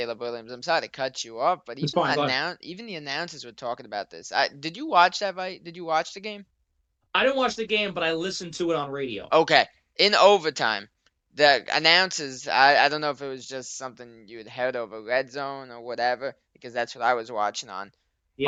Williams, I'm sorry to cut you off, but It's fine, go ahead. even the announcers were talking about this. Did you watch that fight? Did you watch the game? I didn't watch the game, but I listened to it on radio. Okay. In overtime, the announcers, I don't know if it was just something you had heard over Red Zone or whatever, because that's what I was watching on.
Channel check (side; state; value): both; identical; correlation 1.00